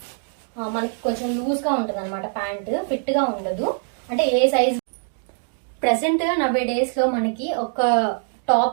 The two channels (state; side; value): silent; left; 59 dB below the other